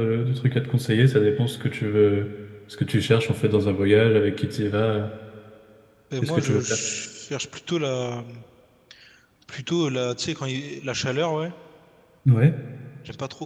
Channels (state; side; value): identical; both; correlation 1.00